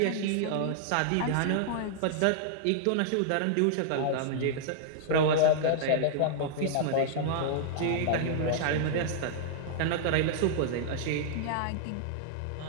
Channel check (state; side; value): different; both; correlation -0.01